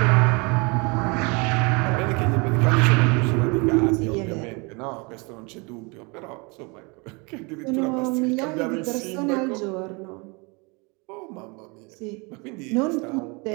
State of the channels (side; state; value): left; quieter; 29.4 dB